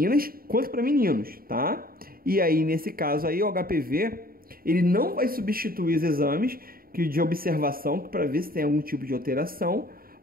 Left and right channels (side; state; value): left; late; 0.43 ms